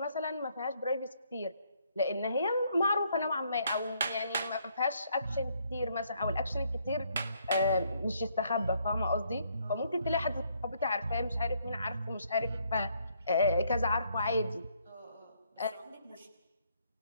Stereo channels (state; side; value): inverted; both; correlation -0.70